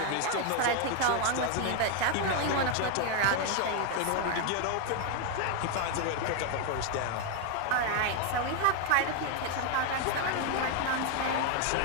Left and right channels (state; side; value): different; both; correlation 0.01